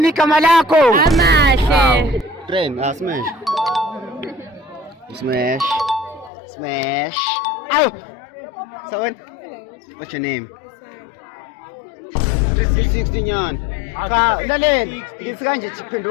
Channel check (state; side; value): drops out; right; at 6.3 s